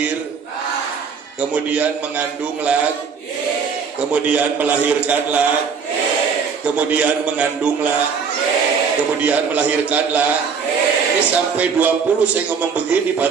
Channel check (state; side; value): quieter; left; 5.9 dB